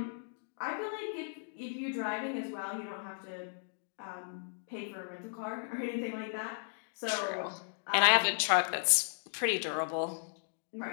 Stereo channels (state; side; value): silent; right; digital silence